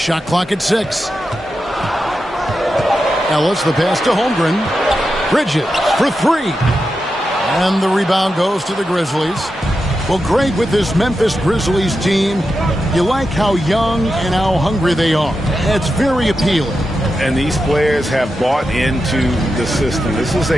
clock at 6. Ellis, the pass to Holmgren. Bridges for 3. And the rebound goes to the Grizzlies. Well, Greg, with this Memphis Grizzlies team, you like how young and how hungry they are. It's very appealing. And these players have bought into the system. This is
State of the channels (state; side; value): normal; both; correlation 0.89